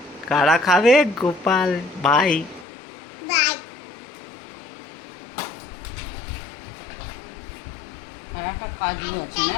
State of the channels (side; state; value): right; drops out; at 2.7 s